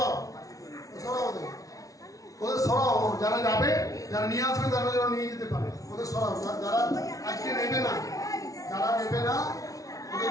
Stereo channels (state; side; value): late; right; 0.17 ms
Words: ওদের সরাও, যারা যাবে, যারা নিয়ে আসবে তারা যেন নিয়ে যেতে পারে, ওদের সরাও। যারা আজকে নেবে না, ওদের